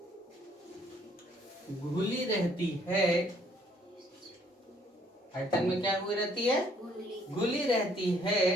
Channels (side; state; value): both; normal; correlation 0.64